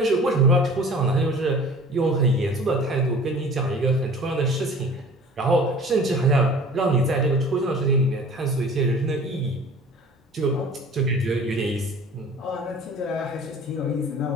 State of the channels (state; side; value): normal; both; correlation 0.45